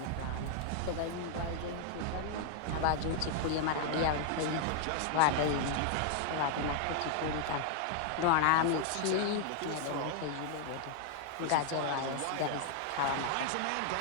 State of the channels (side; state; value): both; different; correlation 0.00